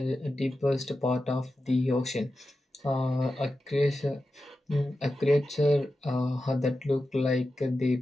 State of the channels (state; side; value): normal; both; correlation 0.92